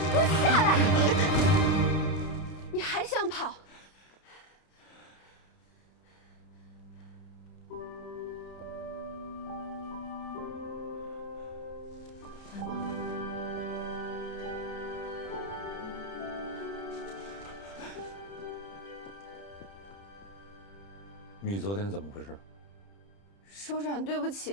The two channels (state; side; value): late; right; 30 ms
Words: 给我下来！你还想跑？你昨天怎么回事？首长，对不